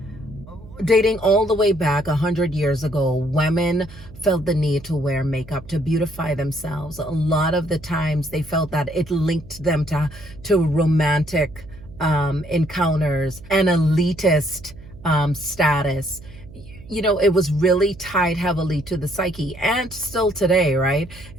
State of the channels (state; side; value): noise; right; hum, 19 dB below the sound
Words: Dating all the way back 100 years ago, women felt the need to wear makeup to beautify themselves. A lot of the times they felt that it linked them to romantic encounters and elitist status. You know, it was really tied heavily to the psyche, and still today, right?